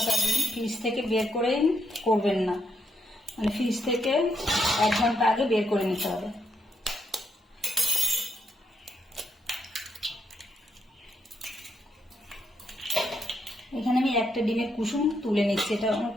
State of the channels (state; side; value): normal; both; correlation 0.78